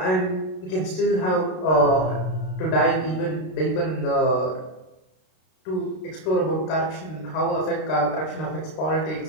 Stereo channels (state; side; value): late; right; 32 ms